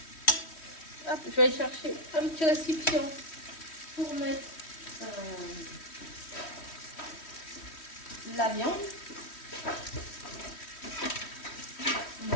Hop, je vais aller chercher un petit récipient pour mettre la viande. Il y a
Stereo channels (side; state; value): right; late; 3.1 ms